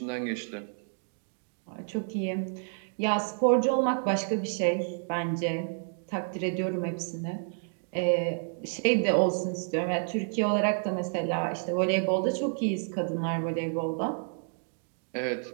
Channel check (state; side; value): silent; left; digital silence